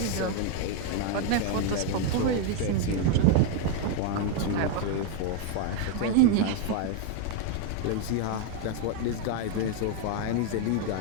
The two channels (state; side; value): different; both; correlation 0.01